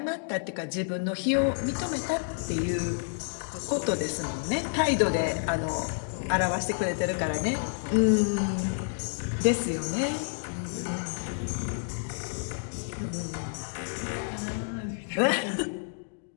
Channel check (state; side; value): silent; right; digital silence